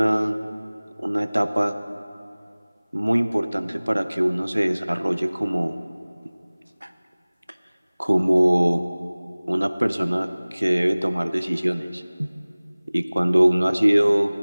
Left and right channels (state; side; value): inverted; both; correlation -1.00